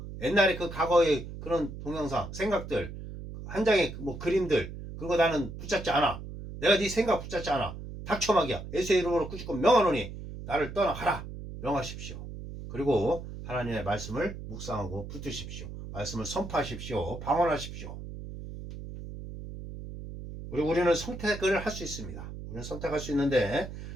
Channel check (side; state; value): right; noise; hum, 10 dB below the sound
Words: 옛날에 그 과거의 그런 동영상, 생각들, 한 장의 뭐 그림들, 그런 거 나는 붙잡지 않아. 내가 네 생각 붙잡지 않아. 닥쳐막이야. 예수의 이름으로 꾸짖고 명하노니 나를 떠나가라. 명하십시오. 그리고 하나님의 말씀을 묵상하고 붙드십시오. 말씀을 선포하십시오. 방언하십시오. 그리고 우리는 선택을 할 수 있습니다. 우리는 선택할 수 있는데